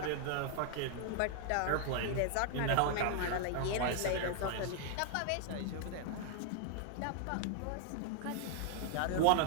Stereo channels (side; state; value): both; different; correlation 0.00